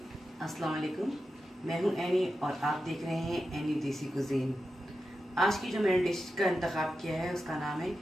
अस्सलाम वालेकुम। मैं हूं एनी और आप देख रहे हैं एनी देसी कुजीन। आज की जो मैंने डिश का इंतखाब किया है उसका नाम है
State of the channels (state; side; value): normal; both; correlation 0.90